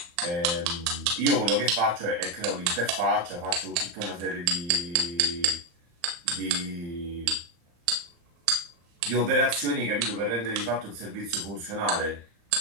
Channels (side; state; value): left; late; 35 ms